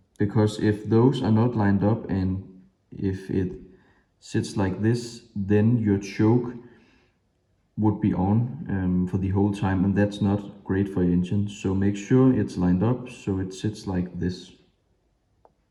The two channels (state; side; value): identical; both; correlation 1.00